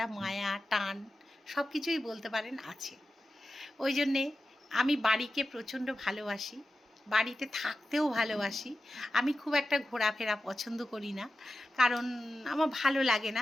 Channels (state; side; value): normal; both; correlation 0.93